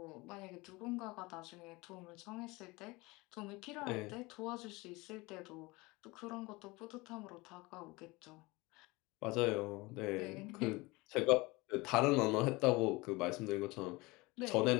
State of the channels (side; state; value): right; quieter; 23.4 dB